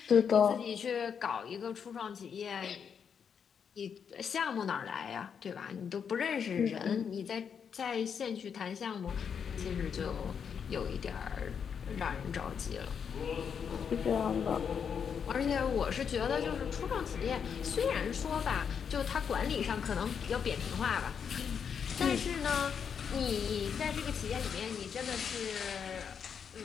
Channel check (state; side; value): quieter; right; 7.1 dB